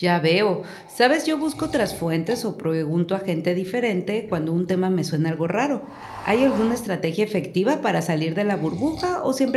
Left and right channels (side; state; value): both; identical; correlation 1.00